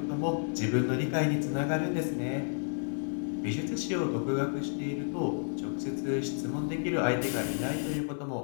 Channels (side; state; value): right; silent; 57 dB below the other